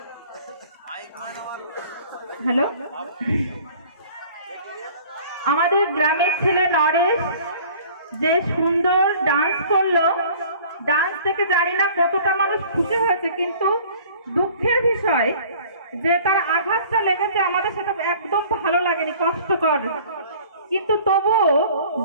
हेलो আমাদের গ্রামের ছেলে নরেশ যে সুন্দর ডান্স করলো, ডান্স থেকে জানি না কতটা মানুষ খুশি হয়েছে, কিন্তু দুঃখের বিষয় যে তার আঘাতটা লেগেছে আমাদের সেটা একদম ভালো লাগেনি, কষ্টকর। কিন্তু তবু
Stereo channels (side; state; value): both; inverted; correlation -0.49